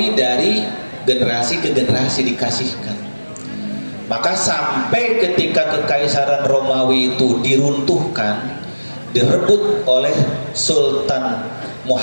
dari generasi ke generasi dikasihkan. Maka sampai ketika kekaisaran Romawi itu diruntuhkan, direbut oleh Sultan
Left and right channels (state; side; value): inverted; both; correlation -1.00